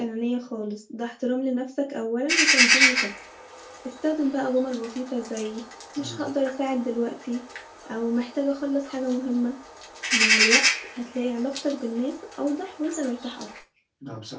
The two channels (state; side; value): identical; both; correlation 1.00